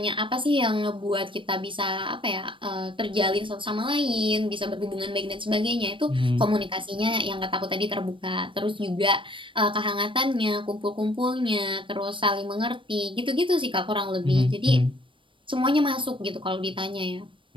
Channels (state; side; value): late; left; 0.25 ms